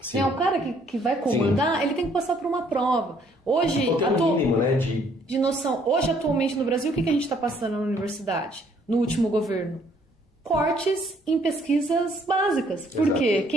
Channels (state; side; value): normal; both; correlation 0.64